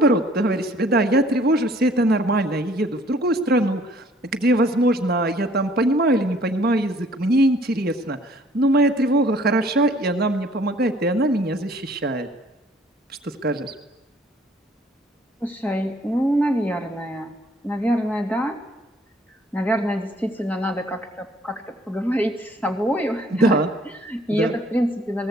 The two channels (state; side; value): normal; both; correlation 0.58